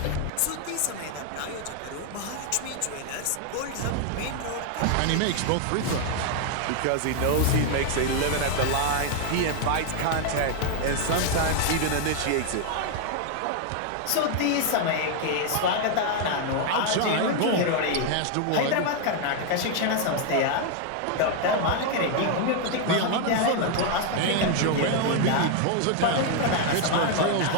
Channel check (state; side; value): different; both; correlation 0.00